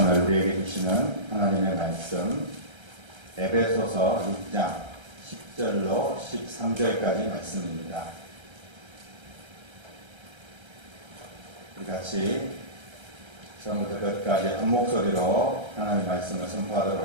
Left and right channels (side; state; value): left; late; 1.3 ms